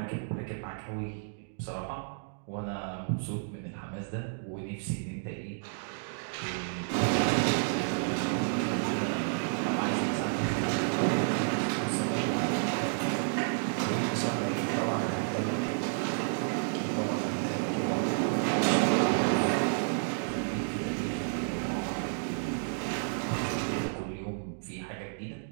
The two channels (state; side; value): silent; left; digital silence